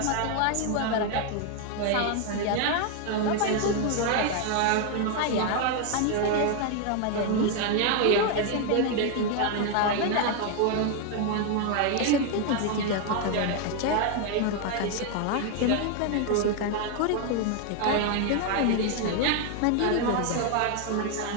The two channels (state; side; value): different; both; correlation 0.01